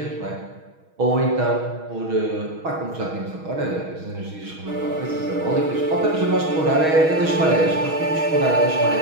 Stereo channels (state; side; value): late; left; 6.3 ms